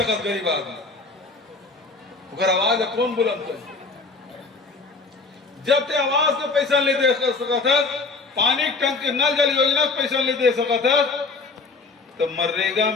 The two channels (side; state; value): right; quieter; 3.9 dB